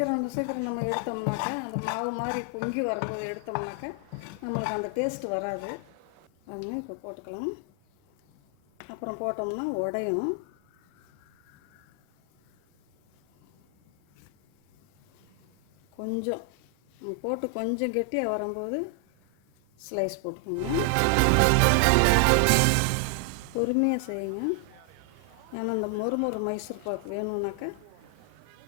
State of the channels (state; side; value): different; both; correlation 0.00